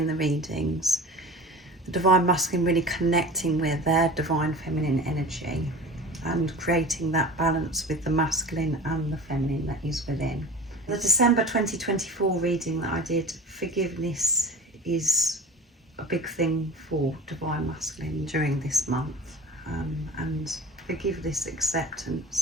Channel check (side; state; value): both; normal; correlation 0.37